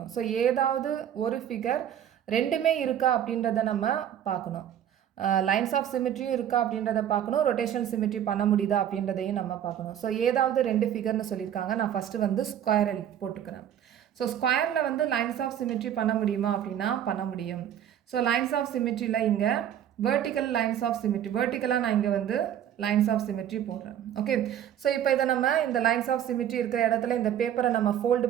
So ஏதாவது ஒரு figure ரெண்டுமே இருக்கா அப்படின்றத நம்ம பார்க்கணும். லைன்ஸ் ஆஃப் சிமெட்ரியும் இருக்கா அப்படின்றத பார்க்கணும், ரொட்டேஷனல் சிமெட்ரி பண்ண முடியுதா அப்படின்றதையும் நம்ம பார்க்கணும். ஸோ ஏதாவது ரெண்டு ஃபிகர்னு சொல்லியிருக்காங்க. நான் ஃபஸ்ட்டு வந்து ஸ்கொயர் போட்டுக்கிறேன். ஸோ ஸ்கொயரில் வந்து லைன்ஸ் ஆஃப் சிமெட்ரி பண்ண முடியுமா அப்படின்னா பண்ண முடியும். ஸோ லைன்ஸ் ஆஃப் சிமெட்ரியில் இங்கே வெர்டிக்கல் லைன்ஸ் ஆஃப் சிமெட்ரி, வெர்டிக்கலாக நான் இங்கே வந்து லைன்ஸ் ஆஃப் சிமெட்ரி போடுறேன். ஓகே, ஸோ இப்போ இதை நம்ம இந்த லைன்ஸ் ஆஃப் சிமெட்ரி இருக்கிற இடத்துல இந்த பேப்பரை நம்ம ஃபோல்டு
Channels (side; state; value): left; quieter; 10.2 dB